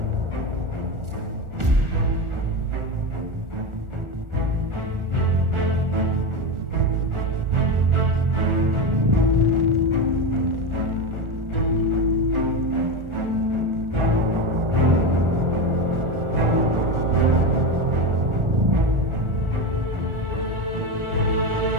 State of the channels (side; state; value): left; late; 1.4 ms